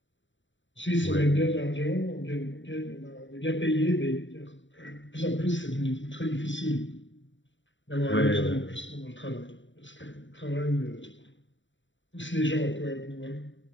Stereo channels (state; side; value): late; right; 0.54 ms